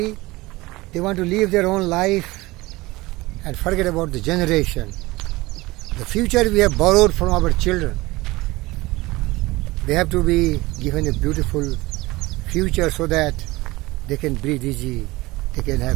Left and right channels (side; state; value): left; quieter; 20.5 dB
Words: they want to live their own life and forget about the generation. The future we have borrowed from our children. They have to be given a beautiful future so that they can breathe easy, they can